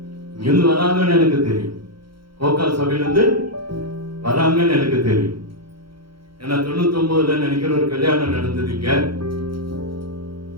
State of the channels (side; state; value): left; late; 0.74 ms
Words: இங்கிருந்து வராங்கன்னு எனக்கு தெரியும். கோக்கால் சபையிலிருந்து வராங்கன்னு எனக்கு தெரியும். ஏன்னா 99 நினைக்கிற ஒரு கல்யாணம் நடந்தது இங்க.